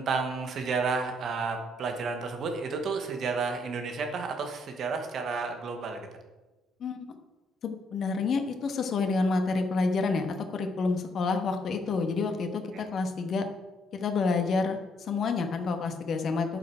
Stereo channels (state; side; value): normal; both; correlation 0.71